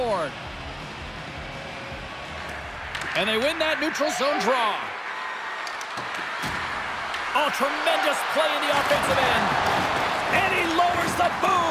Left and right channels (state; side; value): identical; both; correlation 1.00